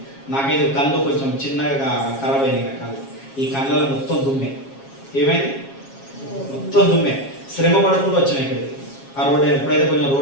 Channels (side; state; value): right; late; 7.3 ms